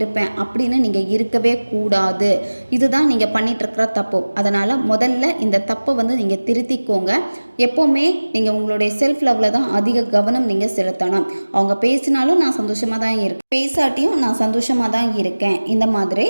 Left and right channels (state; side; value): inverted; both; correlation -1.00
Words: அப்படின்னு நீங்கள் இருக்கவே கூடாது. இதுதான் நீங்கள் பண்ணிகிட்ருக்கிற தப்பு. அதனால் முதல்ல இந்த தப்பை நீங்கள் திருத்திக்கோங்க. எப்போவுமே நீங்கள் உங்களுடைய செல்ஃப் லவ்வில் தான் அதிக கவனம் நீங்கள் செலுத்தணும். அவங்க பேசினாலும் நான் சந்தோஷமாக தான் இருக்கேன், பேசாட்டியும் நான் சந்தோஷமாக தான் இருக்கேன், இந்த மாதிரி